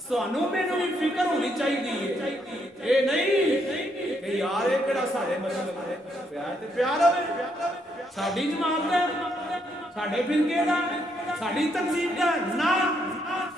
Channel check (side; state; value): both; normal; correlation 0.75